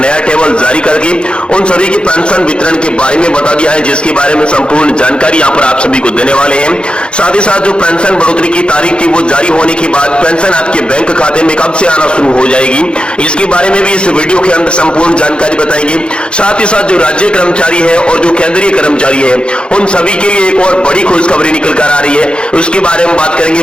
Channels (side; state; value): right; late; 0.054 ms